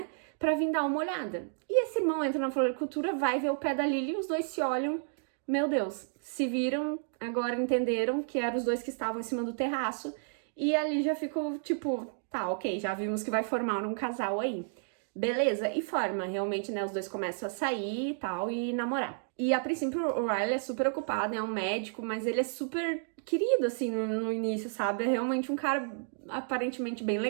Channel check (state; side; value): silent; left; digital silence